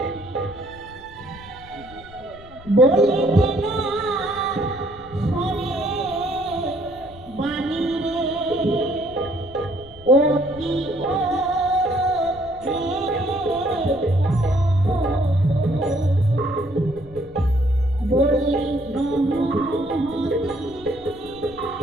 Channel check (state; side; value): noise; left; rumble, 20 dB below the sound